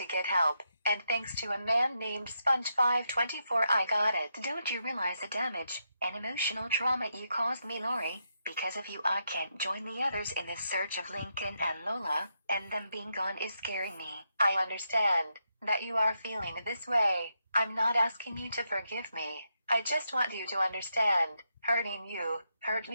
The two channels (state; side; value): inverted; both; correlation -0.82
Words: get help, and thanks to a man named Sponge524 I got it. Don't you realize the damage and emotional trauma you caused me, Lori? Because of you I can't join the others in this search of Lincoln and Lola, and them being gone is scaring me. I understand that you are feeling this way. I'm not asking you to forgive me. I just want you to understand, hurting you hurt